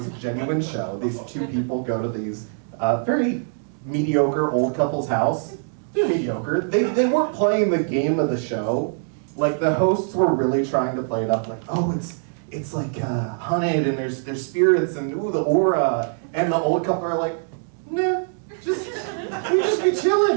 a genuine show. These two people go to these very mediocre old couple's house. They're mediocre. They weren't playing the game of the show. Like the hosts were really trying to play it up like, oh, it's like hunted and there's spirits and ooh, the aura. And the old couple are like, nah, we just be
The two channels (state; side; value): silent; left; digital silence